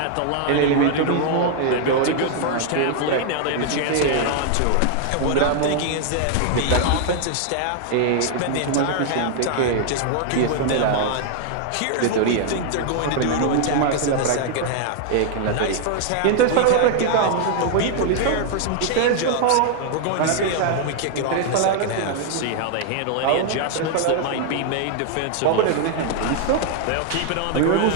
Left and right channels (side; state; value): both; different; correlation 0.00